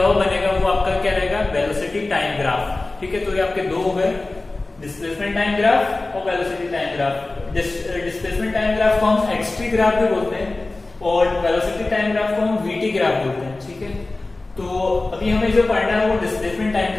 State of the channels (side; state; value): right; quieter; 3.1 dB